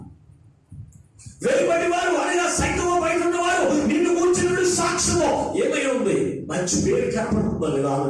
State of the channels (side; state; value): both; identical; correlation 1.00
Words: వెలుపటి వారు అనగా సంఘము బయట ఉన్నవారు నిన్ను కూర్చున్న సాక్ష్యము ఏమై ఉంది? మంచి పేరు కనపడుతుందా లేదా